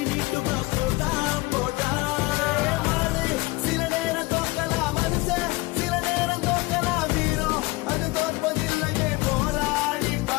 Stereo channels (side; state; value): right; quieter; 22.5 dB